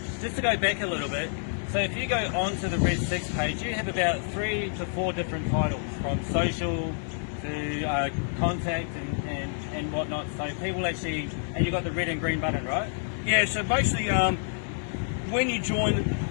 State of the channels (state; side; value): silent; right; digital silence